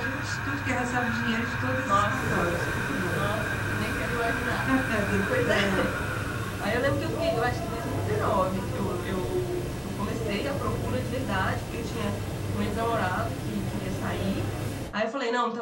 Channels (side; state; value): both; identical; correlation 1.00